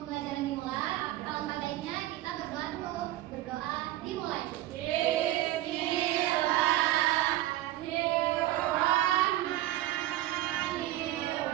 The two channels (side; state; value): left; quieter; 15.3 dB